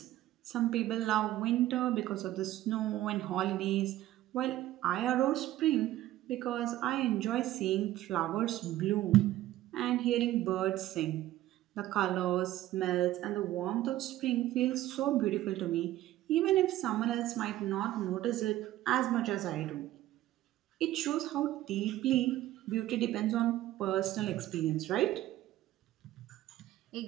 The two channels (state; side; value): quieter; left; 14.7 dB